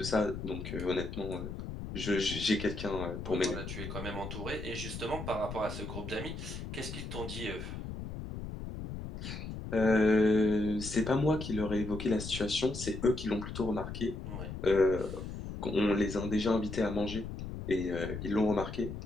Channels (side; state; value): left; noise; rumble, 7 dB below the sound